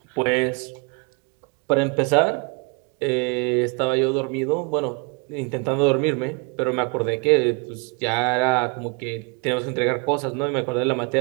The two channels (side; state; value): left; quieter; 33.3 dB